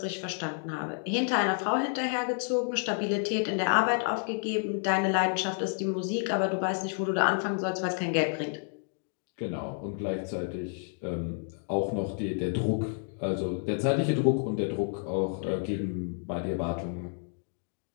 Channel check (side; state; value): right; silent; 55 dB below the other